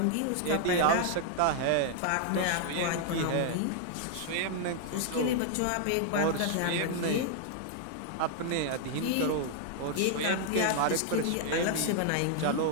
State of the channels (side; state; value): both; different; correlation 0.00